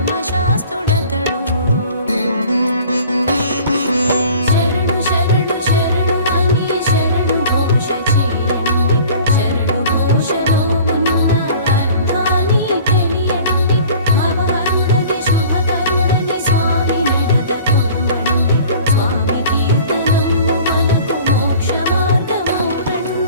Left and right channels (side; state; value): both; inverted; correlation -0.46